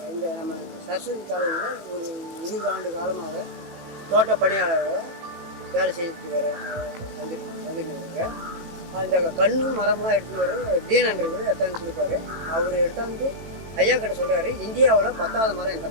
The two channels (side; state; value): left; late; 18 ms